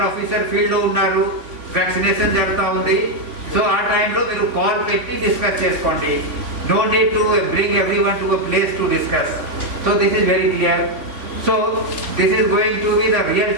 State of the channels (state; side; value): late; left; 3.5 ms